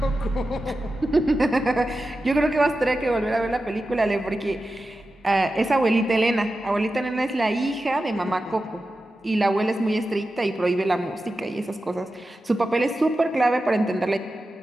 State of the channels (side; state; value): both; normal; correlation 0.92